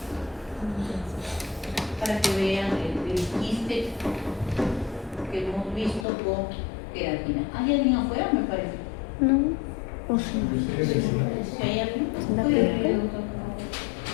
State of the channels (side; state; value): right; drops out; at 6.1 s